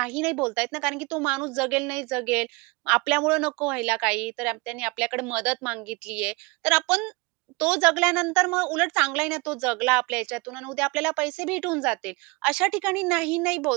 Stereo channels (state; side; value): quieter; left; 25.9 dB